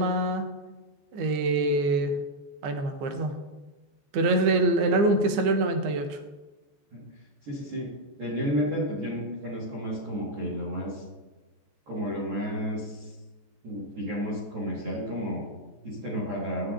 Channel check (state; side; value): late; left; 15 ms